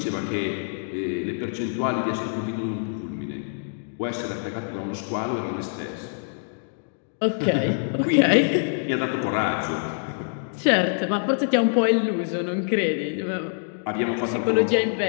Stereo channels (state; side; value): silent; right; digital silence